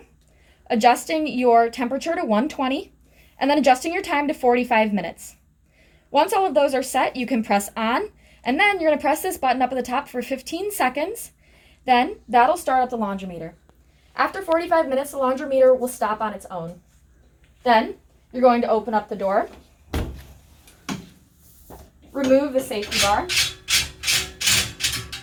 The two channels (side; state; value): both; identical; correlation 1.00